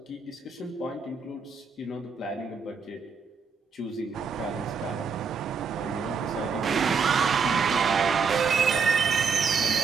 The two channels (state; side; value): quieter; left; 5.5 dB